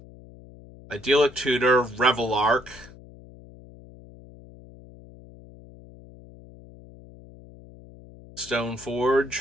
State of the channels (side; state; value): left; noise; hum, 21 dB below the sound